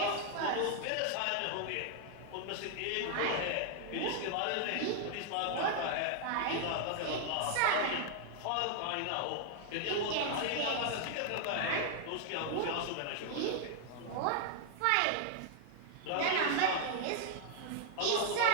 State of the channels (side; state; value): both; different; correlation 0.00